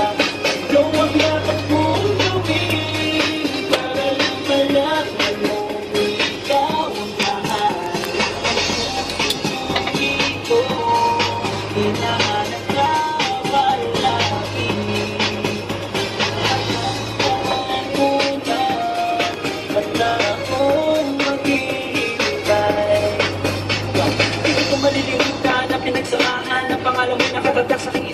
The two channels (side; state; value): both; identical; correlation 1.00